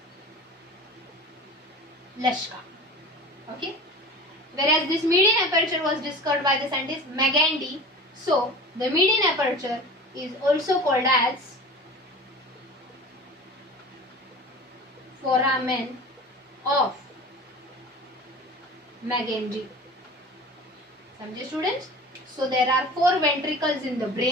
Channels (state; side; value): normal; both; correlation 0.37